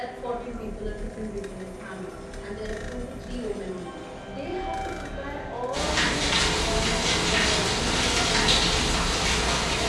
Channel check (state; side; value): identical; both; correlation 1.00